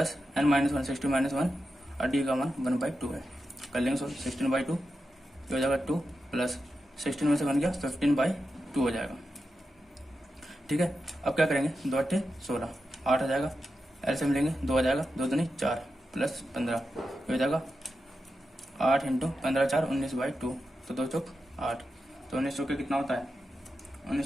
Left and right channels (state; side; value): normal; both; correlation 0.89